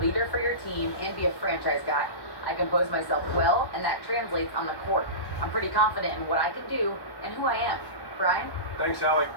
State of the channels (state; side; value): late; right; 1.1 ms